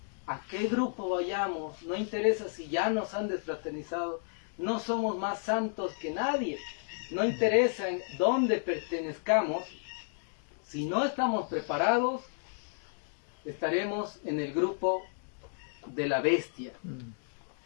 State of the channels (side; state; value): right; silent; digital silence